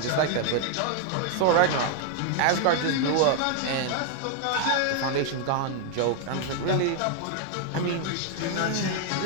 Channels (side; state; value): both; different; correlation 0.00